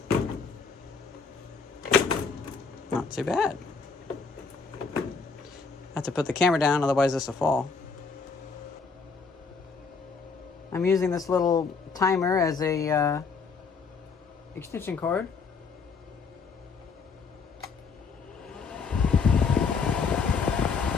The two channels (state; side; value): quieter; right; 5.0 dB